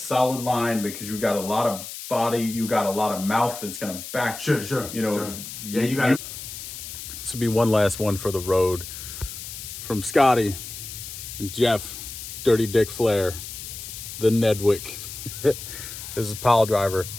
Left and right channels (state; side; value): noise; left; hiss, 10 dB below the sound